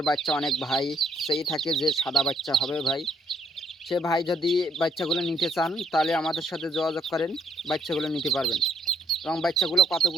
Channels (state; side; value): normal; both; correlation 0.69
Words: বাচ্চা অনেক ভাই সেই থাকে যে সাদা বাচ্চা হবে ভাই। সে ভাই যদি বাচ্চাগুলো নিতে চান তাহলে আমাদের সাথে যোগাযোগ করেন, বাচ্চাগুলো নিতে পারবেন। এবং বাচ্চাগুলো